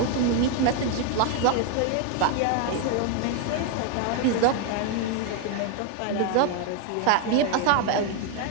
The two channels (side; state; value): both; different; correlation 0.01